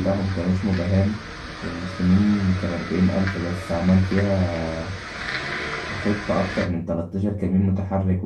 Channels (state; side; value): identical; both; correlation 1.00